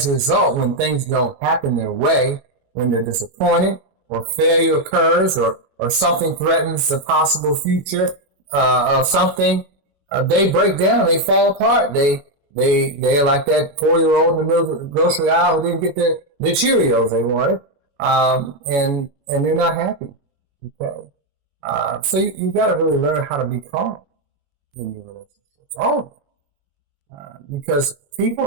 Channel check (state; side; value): late; left; 21 ms